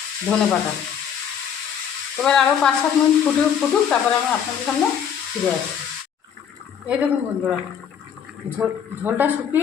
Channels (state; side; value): quieter; right; 8.1 dB